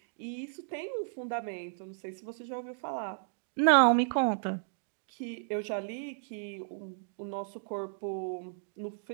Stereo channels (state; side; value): silent; left; digital silence